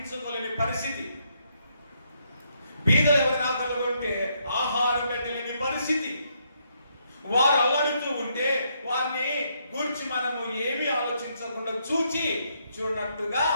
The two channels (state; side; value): inverted; both; correlation -0.75